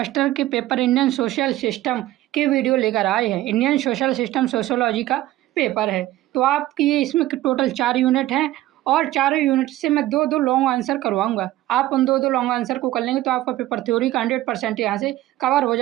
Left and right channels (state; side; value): quieter; left; 15.4 dB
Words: के पेपर इंडियन सोशल सिस्टम की वीडियो लेकर आए हैं। इंडियन सोशल सिस्टम सोशियोलॉजी का पेपर है। तो आपकी ये इसमें टोटल 4 यूनिट हैं और चारों यूनिट से मैं दो दो लॉन्ग आंसर करवाऊंगा। आप उन दो दो लॉन्ग आंसर को कर लेंगे तो आपका पेपर थ्योरी का 100% यहाँ से कवर हो